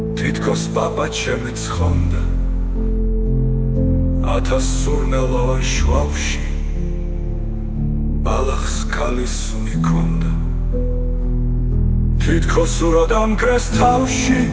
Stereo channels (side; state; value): both; identical; correlation 1.00